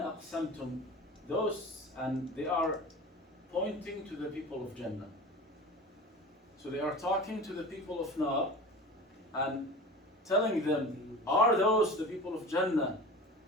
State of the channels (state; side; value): normal; both; correlation 0.35